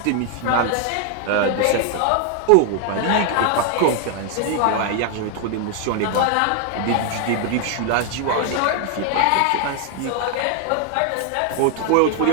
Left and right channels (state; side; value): different; both; correlation 0.00